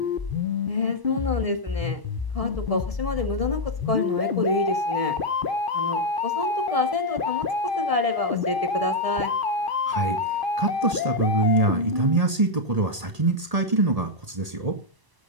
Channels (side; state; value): left; late; 1.8 ms